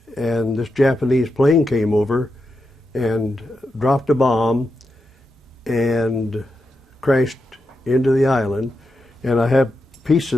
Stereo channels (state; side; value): normal; both; correlation 0.87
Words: and this Japanese plane came over and dropped a bomb and crashed into the island, and I have